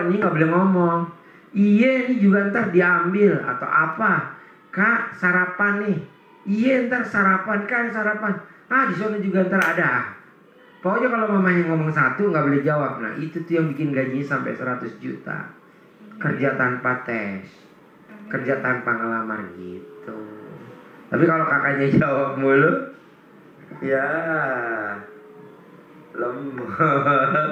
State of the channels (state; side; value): identical; both; correlation 1.00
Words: ini nggak boleh ngomong. Iya ini juga ntar diambil atau apa. Kak sarapan nih. Iya ntar sarapan kan sarapan. Di sana juga ntar ada. Pokoknya kalau mamanya ngomong satu nggak boleh jawab. Nah itu tuh yang bikin gajinya sampai 100 juta. Kerja tanpa tes, kerja tanpa ngelamar gitu. Tapi kalau kakaknya jawab mulu, ya